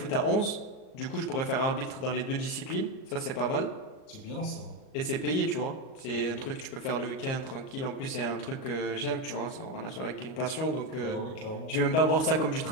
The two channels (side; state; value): right; late; 38 ms